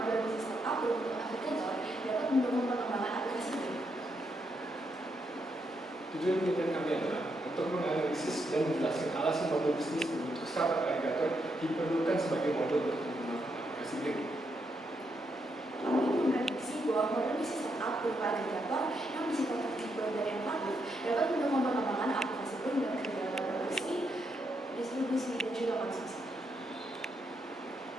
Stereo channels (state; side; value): normal; both; correlation 0.80